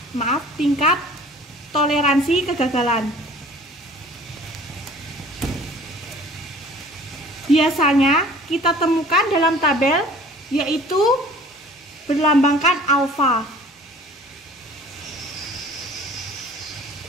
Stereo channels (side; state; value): both; normal; correlation 0.49